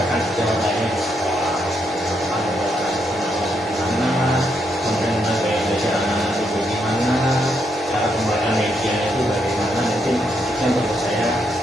sejawat lainnya di sekolah. Kemudian gaya belajar anak-anak itu gimana, cara pembacaan medianya itu bagaimana, mungkin yang perlu saya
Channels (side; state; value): both; normal; correlation 0.78